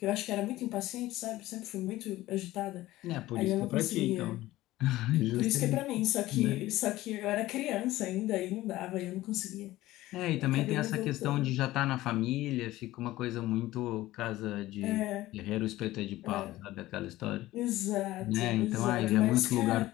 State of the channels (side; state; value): right; quieter; 16.6 dB